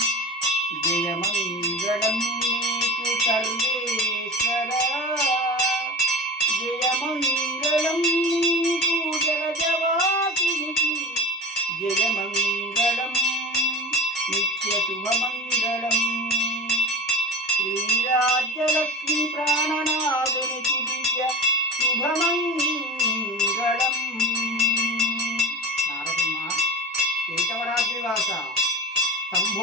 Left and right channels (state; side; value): normal; both; correlation 0.33